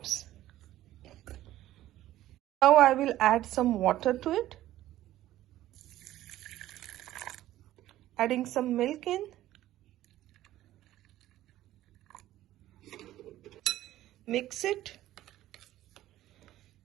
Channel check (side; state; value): left; quieter; 14.3 dB